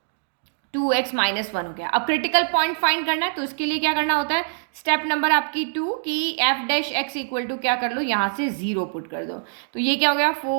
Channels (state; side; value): silent; left; digital silence